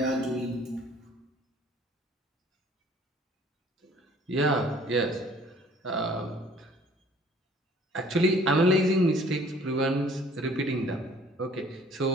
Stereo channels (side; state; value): both; normal; correlation 0.55